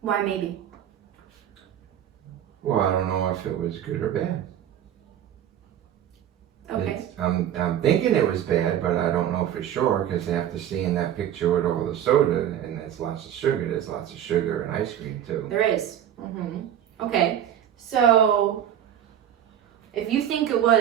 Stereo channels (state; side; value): quieter; left; 10.5 dB